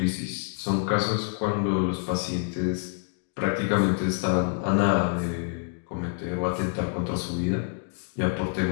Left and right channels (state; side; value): quieter; right; 38.9 dB